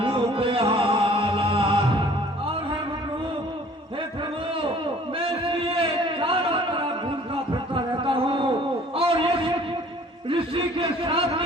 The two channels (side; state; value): both; normal; correlation 0.52